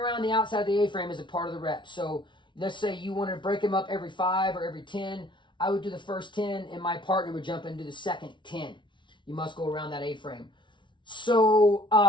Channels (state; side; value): late; right; 0.24 ms